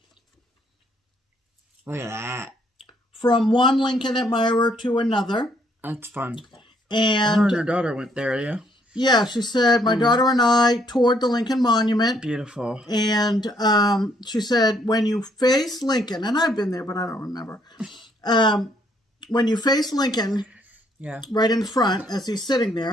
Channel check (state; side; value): normal; both; correlation 0.69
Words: Look at that. From one Lincoln admirer to another. That's fun. And her daughter went there, yeah. Yeah, she said, my daughter and I toured the Lincoln Monument. Beautiful. And she said, when you face Lincoln, and I've been there, but I don't remember. When you face Lincoln, yeah, right in front, as he's sitting